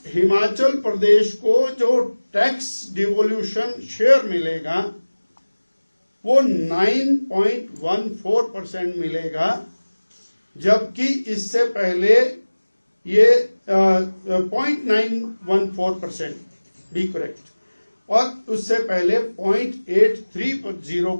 हिमाचल प्रदेश को जो टैक्स डिवोल्यूशन शेयर मिलेगा वो 9.14% मिलेगा, जबकि इससे पहले ये 0.914% बी करेक्ट, और उससे पहले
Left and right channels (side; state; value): both; inverted; correlation -1.00